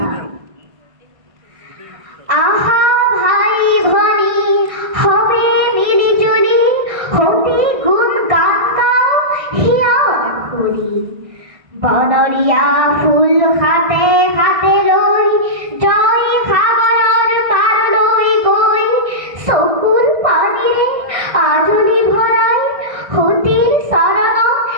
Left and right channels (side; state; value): left; late; 1.6 ms